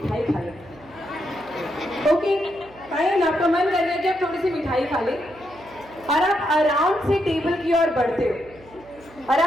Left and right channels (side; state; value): right; noise; hum, 24 dB below the sound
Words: खा लें। ओके फाइन, आपका मन कर गया कि आप थोड़ी सी मिठाई खा लें और आप आराम से टेबल की ओर बढ़ते हो और